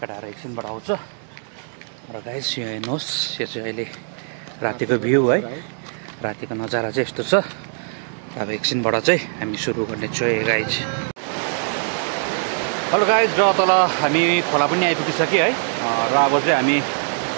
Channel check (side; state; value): left; silent; 60 dB below the other